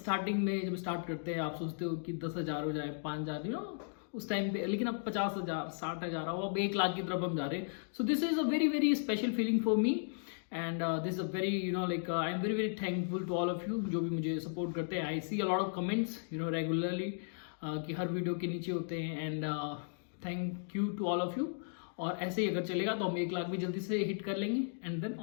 में जब स्टार्ट करते हैं आप सोचते हो कि 10,000 हो जाए, 5,000 यू नो उस टाइम पे, लेकिन अब 50,000 60,000 हो, अब 1 लाख की तरफ हम जा रहे हैं. So this is a very very special feeling for me and this is a very you know like I am very very thankful to all of you जो भी मुझे सपोर्ट करते हैं. I see a lot of comments you know regularly कि हर video के नीचे होते हैं and thank you to all of you. और ऐसे ही अगर चलेगा तो हम 1 लाख भी जल्दी से हिट कर लेंगे एंड देन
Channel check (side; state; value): right; silent; digital silence